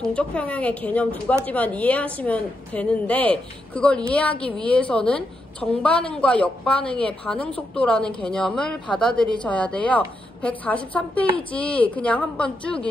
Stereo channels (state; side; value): normal; both; correlation 0.83